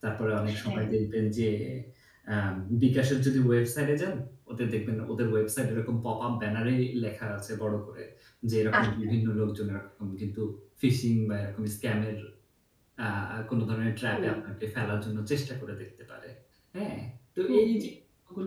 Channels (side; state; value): both; identical; correlation 1.00